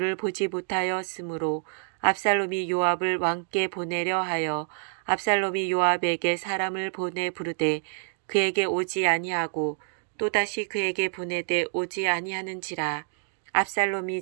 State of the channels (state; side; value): silent; left; digital silence